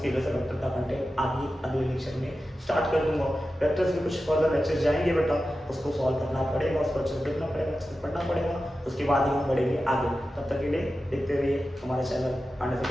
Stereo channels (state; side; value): normal; both; correlation 0.93